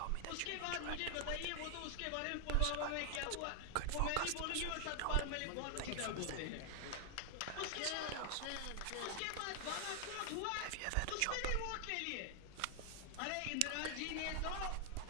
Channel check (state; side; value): different; both; correlation 0.00